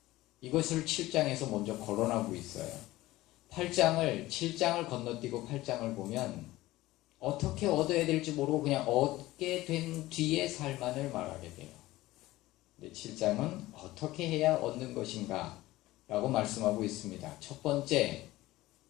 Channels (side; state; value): right; quieter; 17.5 dB